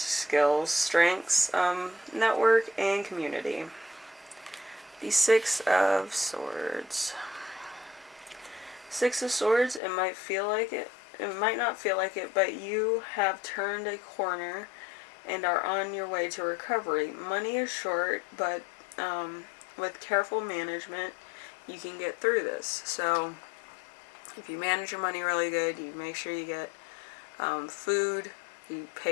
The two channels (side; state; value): right; drops out; at 9.8 s